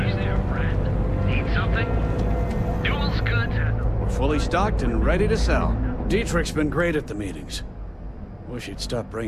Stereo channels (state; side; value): identical; both; correlation 1.00